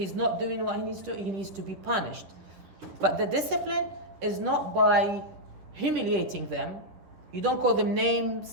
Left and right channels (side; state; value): left; late; 10 ms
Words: not doing what he needs to be punished. But the discipline is not by humiliating them. You don't call them